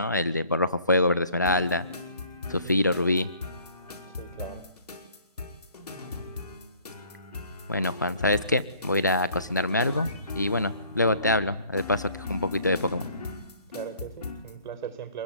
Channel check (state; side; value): inverted; both; correlation -0.56